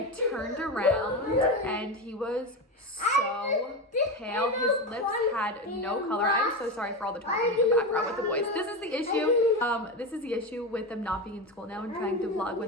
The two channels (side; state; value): both; normal; correlation 0.18